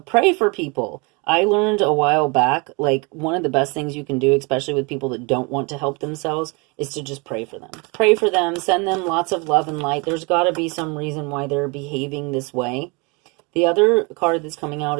Pray for people. I learned a while back, like, one of the best things you can do, especially with people that don't want to help themselves, is to just pray for them. Pray for them, send them lots of love and light. There's got to be some reason why they're behaving this way. The other card that's coming out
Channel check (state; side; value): quieter; left; 29.8 dB